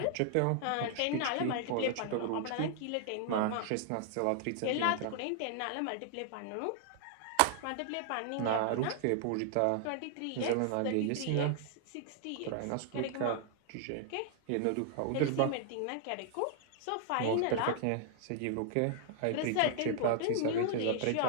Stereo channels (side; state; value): both; different; correlation -0.01